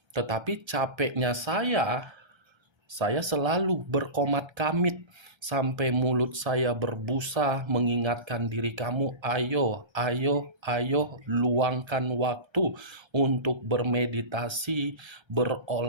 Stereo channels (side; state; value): left; late; 1.3 ms